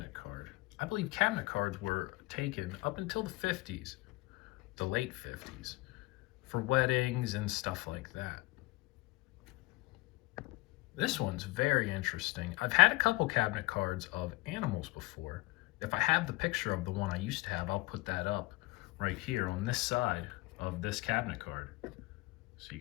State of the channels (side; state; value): right; quieter; 22.4 dB